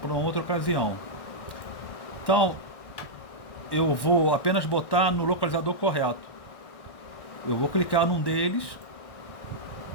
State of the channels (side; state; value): right; late; 1.6 ms